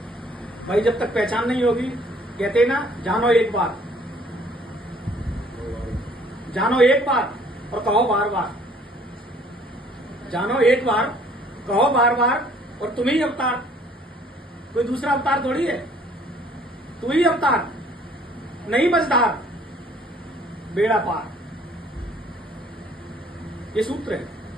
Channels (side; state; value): both; normal; correlation 0.58